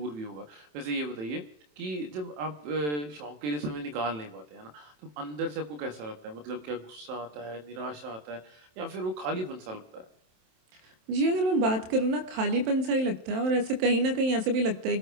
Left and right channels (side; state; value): left; late; 27 ms